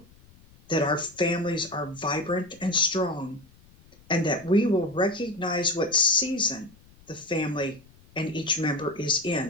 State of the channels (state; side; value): noise; left; rumble, 26 dB below the sound